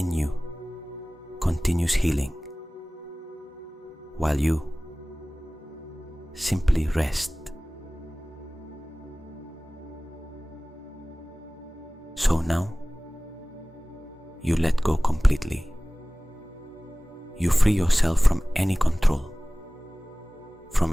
you continues healing, while you simply rest. So now, you let go completely. You free yourself from any control,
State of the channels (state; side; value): normal; both; correlation 0.98